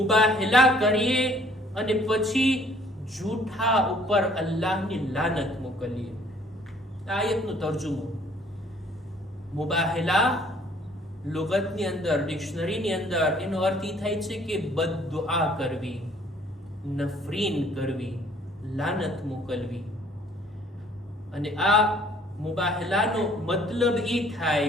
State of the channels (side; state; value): both; normal; correlation 0.59